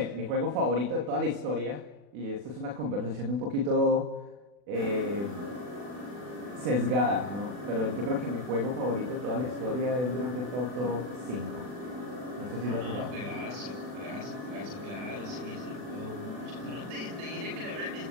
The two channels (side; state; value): left; late; 40 ms